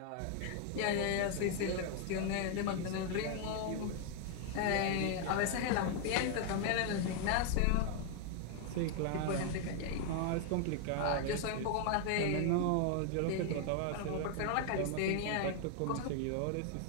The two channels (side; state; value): both; different; correlation 0.00